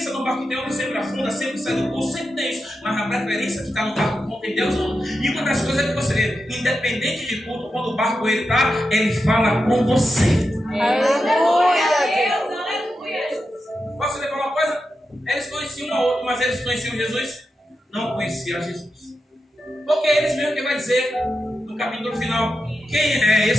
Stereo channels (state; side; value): normal; both; correlation 0.89